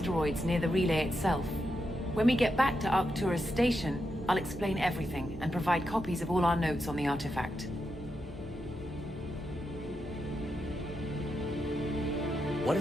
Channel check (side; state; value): both; normal; correlation 0.85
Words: near the relay itself. When we get back to Arcturus Station, I'll explain everything and provide copies of all our notes on the artifact. What